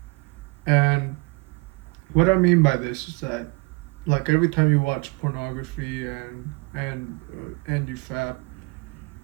and what I mean by this is that, like every time you watch pornography and you fap,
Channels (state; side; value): quieter; left; 27.9 dB